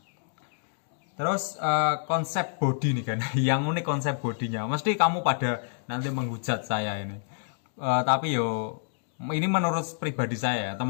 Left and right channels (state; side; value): silent; right; digital silence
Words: terus konsep body nih kan. Yang unik konsep bodinya. Mesti kamu pada nanti menghujat saya ini. Tapi yo ini menurut pribadi saya.